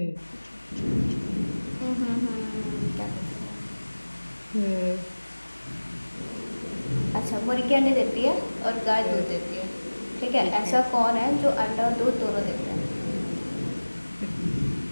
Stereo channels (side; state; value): both; inverted; correlation -1.00